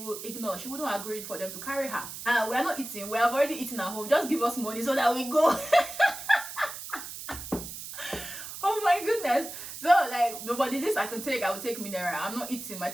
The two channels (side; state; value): right; noise; hiss, 10 dB below the sound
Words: ignore. She wouldn't agree for them to carry her. We're not eating. We have already eaten at home. Just give us money so that we go. Oh my goodness. So like, nobody this I can take. I will take mineral. I'm not eating. My